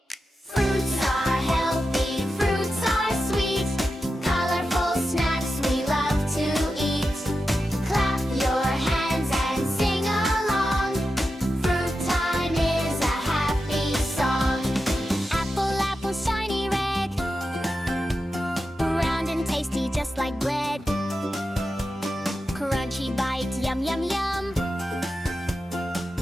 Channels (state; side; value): normal; both; correlation 0.90